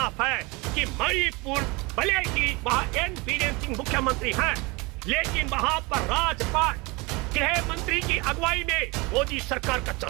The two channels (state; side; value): quieter; left; 26.1 dB